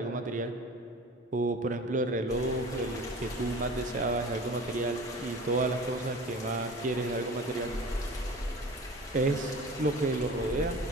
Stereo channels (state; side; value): normal; both; correlation 0.39